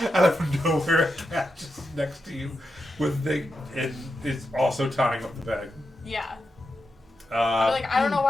out of nowhere, a cat just next to you with and is also tying up the bag. Yeah. I'm like, I don't Hmm. know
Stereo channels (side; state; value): both; normal; correlation 0.87